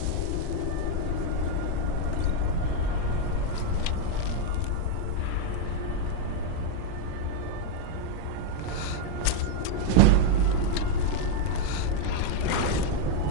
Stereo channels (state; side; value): different; both; correlation 0.01